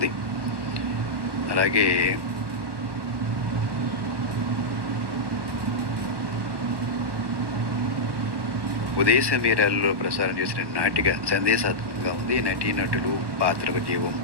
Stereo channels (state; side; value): late; left; 1.1 ms